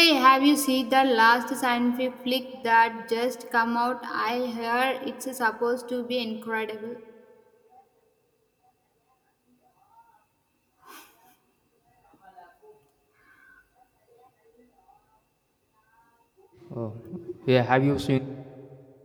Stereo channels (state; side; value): identical; both; correlation 1.00